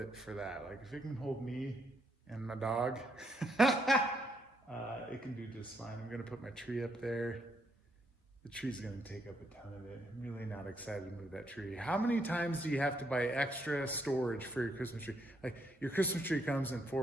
for that. Like, if it can hold me and my dog, it can do just fine. I'm going to put my tree up there. The tree's going to take up a ton of it. I'm really not excited to move that tree. How many times do you have to buy extra storage for your Christmas tree? Like, your Christmas tree comes in 4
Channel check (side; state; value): both; normal; correlation 0.74